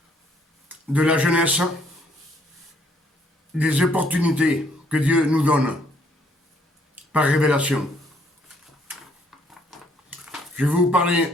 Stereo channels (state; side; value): normal; both; correlation 0.66